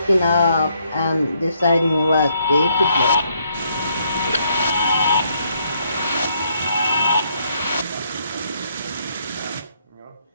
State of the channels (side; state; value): both; inverted; correlation -0.71